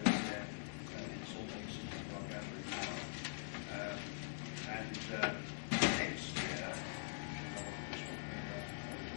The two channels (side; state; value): right; silent; digital silence